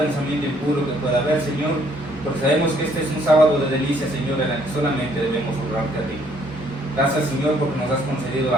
impuro que pueda haber, Señor, porque sabemos que este es un sábado de delicia, Señor, en el que solamente debemos honrarte a ti. Gracias, Señor, porque nos has concedido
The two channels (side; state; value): both; normal; correlation 0.65